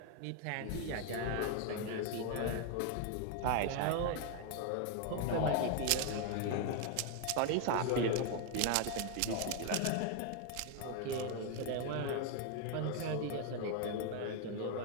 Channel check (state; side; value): different; both; correlation 0.00